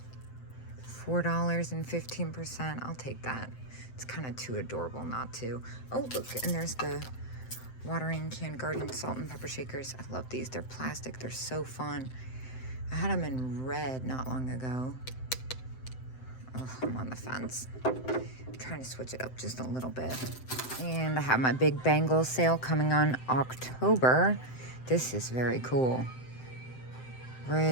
$4 and 15%. I'll take that. It's kind of too adorable not to. Oh, look, and there's the watering can garden salt and pepper shakers. I love these. They're plastic. They're so fun. I had them in red not long ago. Oh, I'm on the fence. I'm trying to switch it up just a little bit. And I have my big bangle sale coming on October. This is very cool.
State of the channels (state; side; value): late; right; 7.8 ms